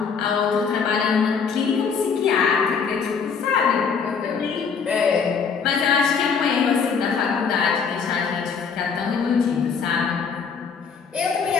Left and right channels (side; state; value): right; quieter; 5.9 dB